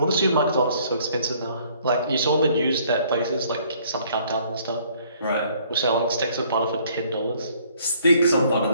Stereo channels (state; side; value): inverted; both; correlation -0.61